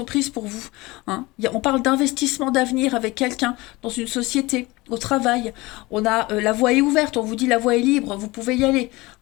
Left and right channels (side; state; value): right; quieter; 21.6 dB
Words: pour vous. Hein. On parle d'investissement d'avenir avec quelqu'un dans une société, au travail. On a la voie est ouverte, on vous dit la voie est libre, vous pouvez y aller.